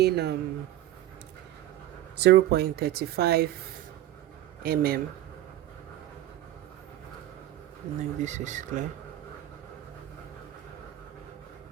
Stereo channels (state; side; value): quieter; left; 13.8 dB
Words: 0.35 mm. No, this is clear.